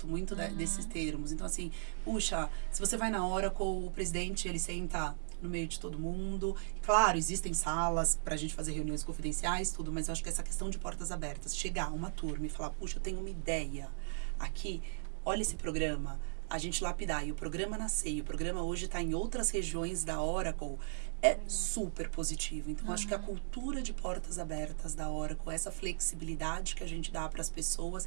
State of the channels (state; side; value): silent; left; digital silence